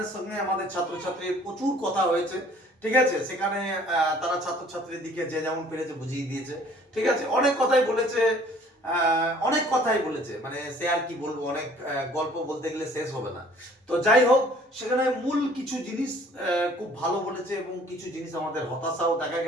সঙ্গে আমাদের ছাত্রছাত্রীর প্রচুর কথা হয়েছে। ঠিক আছে, সেখানে তারা ছাত্রছাত্রীর দিকে যে যেমন পেরেছে বুঝিয়ে দিয়েছে। ঠিক আছে, অনেক কথাই বলেছে, মানে সে আর কি বলবো, অনেক গল্প বলতে গেলে শেষ হবে না। তো যাই হোক, সেখানে মূল কিছু জিনিস খুব ভালো বলেছে এবং কিছু জিনিস আমাদের হতাশাও দেখা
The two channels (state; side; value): normal; both; correlation 0.55